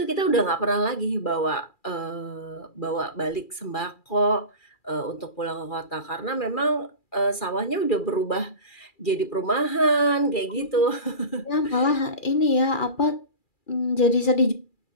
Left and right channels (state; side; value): late; right; 2.4 ms